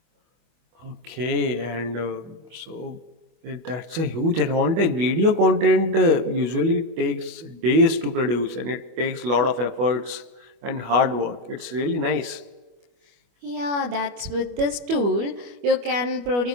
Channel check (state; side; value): late; left; 25 ms